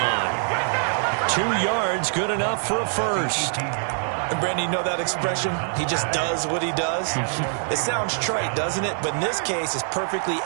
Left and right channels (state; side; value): silent; left; digital silence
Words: 2 yards, good enough for a first. And Brandon, you know that expression? He just does what he does. It sounds trite, doesn't it? But in this case, it's perfectly